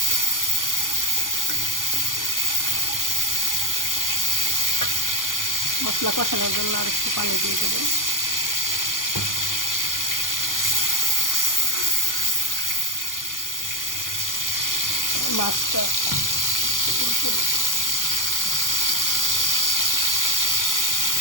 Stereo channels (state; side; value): late; right; 0.89 ms